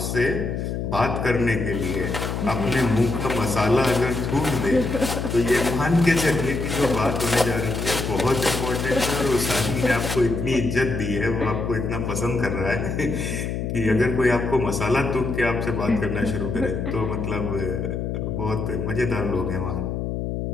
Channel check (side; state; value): left; noise; hum, 3 dB below the sound